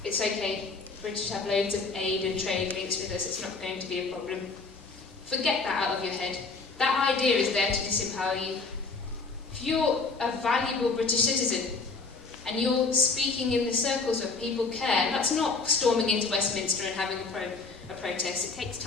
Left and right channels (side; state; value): right; quieter; 4.1 dB